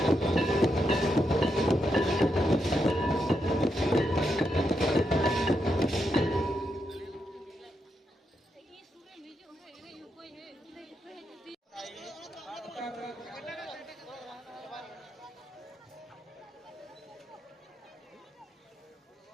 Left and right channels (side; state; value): both; normal; correlation 0.82